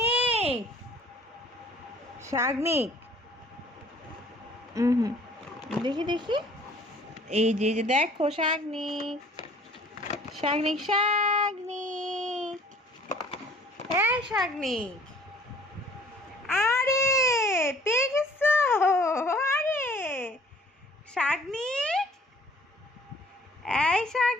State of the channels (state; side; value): normal; both; correlation 0.54